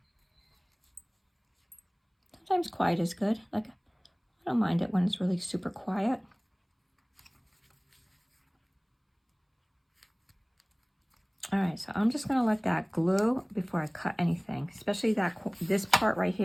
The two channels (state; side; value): identical; both; correlation 1.00